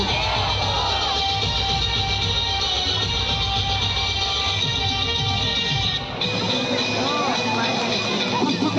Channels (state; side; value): identical; both; correlation 1.00